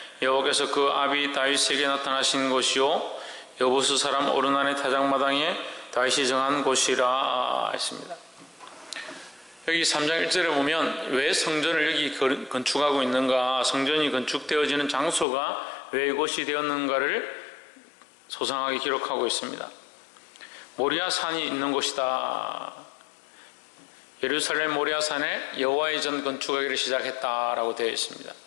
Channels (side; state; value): right; drops out; at 15.2 s